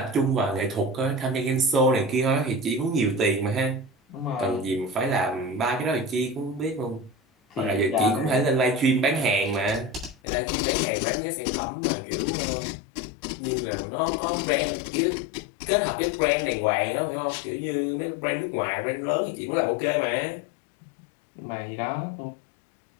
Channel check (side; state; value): right; drops out; at 10.2 s